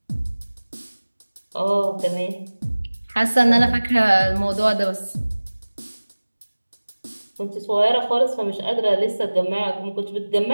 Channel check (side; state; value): both; inverted; correlation -1.00